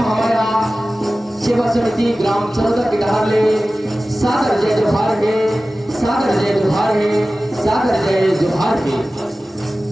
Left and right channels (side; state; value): both; normal; correlation 0.96